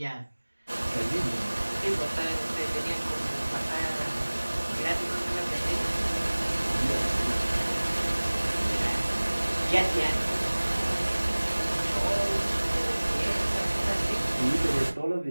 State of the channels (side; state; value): both; inverted; correlation -1.00